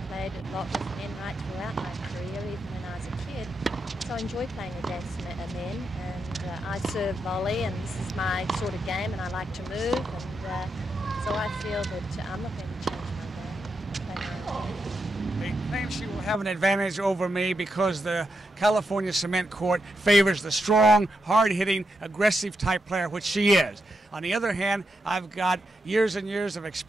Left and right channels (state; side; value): normal; both; correlation 0.84